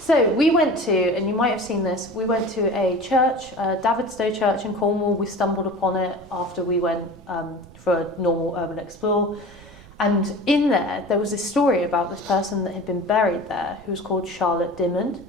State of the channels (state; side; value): noise; right; rumble, 21 dB below the sound